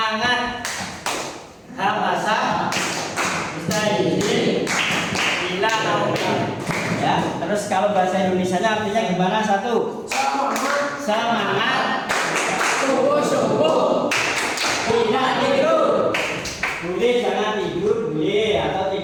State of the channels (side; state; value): both; identical; correlation 1.00